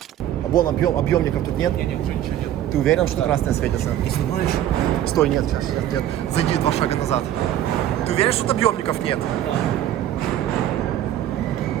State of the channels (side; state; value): left; quieter; 11.8 dB